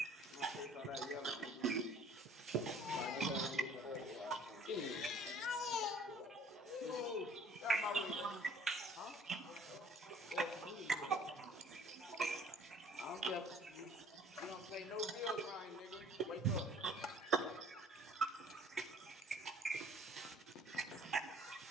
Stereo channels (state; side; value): normal; both; correlation 0.54